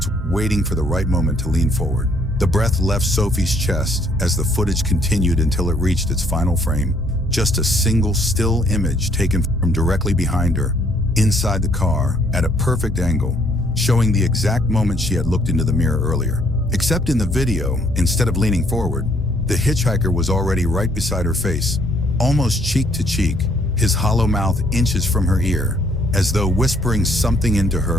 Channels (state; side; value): normal; both; correlation 0.66